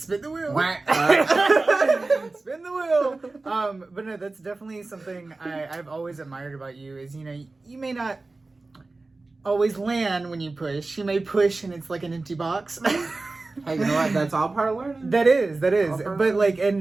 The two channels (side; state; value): left; quieter; 3.4 dB